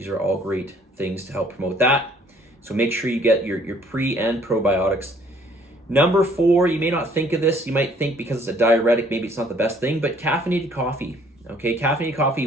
are all great things to help promote that. So make sure you get your pre and probiotics. Number four, you may not think of this. You might think because it's a diuretic, maybe it's not the best thing, but caffeinated coffee. Okay, caffeinated coffee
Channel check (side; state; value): both; normal; correlation 0.59